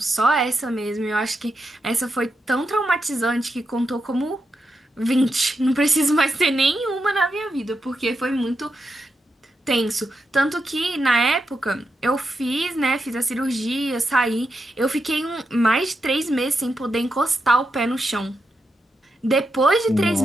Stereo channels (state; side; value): normal; both; correlation 0.86